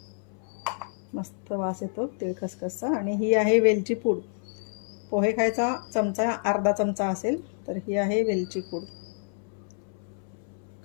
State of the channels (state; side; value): silent; right; 59 dB below the other